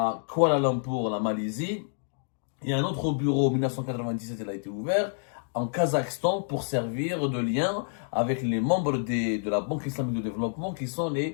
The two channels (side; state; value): right; silent; digital silence